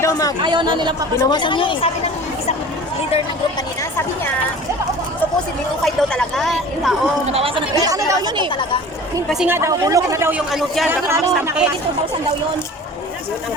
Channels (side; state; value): both; normal; correlation 0.41